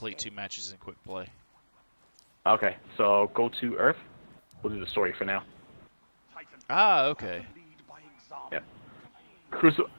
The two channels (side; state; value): both; inverted; correlation -1.00